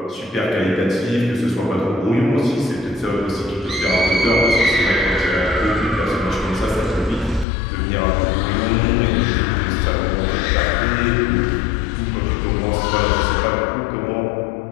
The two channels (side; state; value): right; drops out; at 7.5 s